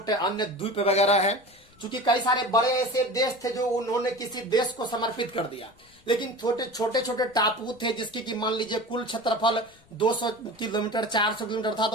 अन्य द्वीप वगैरह है, क्योंकि कई सारे बड़े ऐसे देश थे जो उन्होंने किसी देश को समर्पित कर दिया, लेकिन छोटे छोटे टापू थे जिसकी कि मान लीजिए कुल क्षेत्रफल 200 किलोमीटर 400 किलोमीटर था,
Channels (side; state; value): left; noise; rumble, 30 dB below the sound